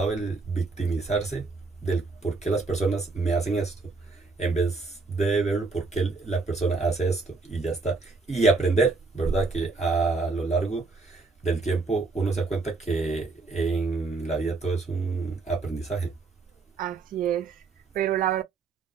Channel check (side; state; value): left; quieter; 4.0 dB